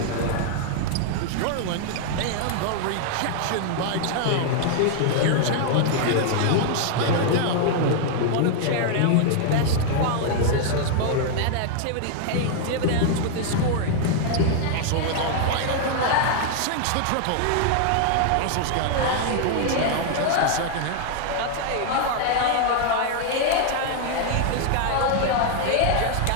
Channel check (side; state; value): both; different; correlation 0.00